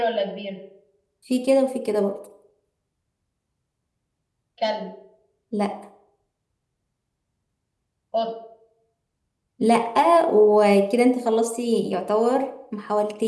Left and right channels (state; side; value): identical; both; correlation 1.00